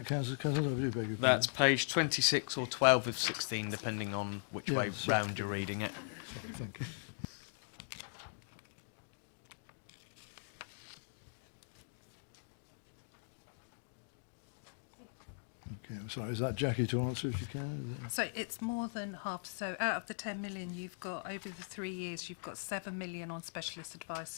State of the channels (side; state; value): right; silent; digital silence